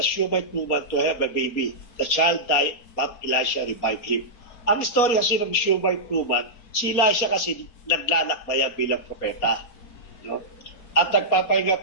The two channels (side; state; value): right; late; 4.2 ms